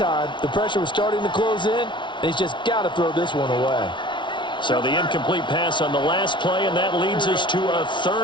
the pressure was starting to close in, and he's just got to throw this one away. So the incomplete pass on the last play, and that leads us to a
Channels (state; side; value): late; right; 0.24 ms